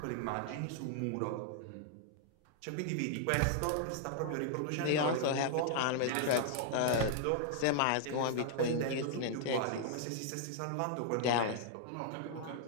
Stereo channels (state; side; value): different; both; correlation -0.01